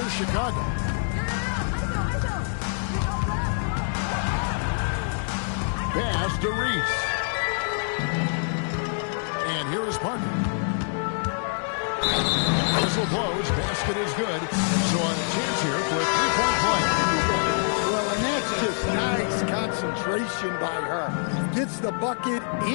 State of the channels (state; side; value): silent; right; digital silence